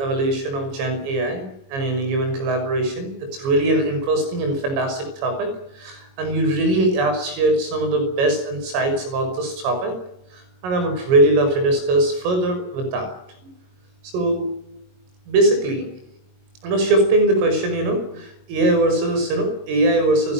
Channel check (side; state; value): left; late; 22 ms